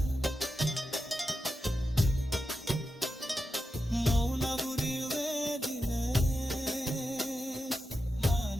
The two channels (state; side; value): normal; both; correlation 0.90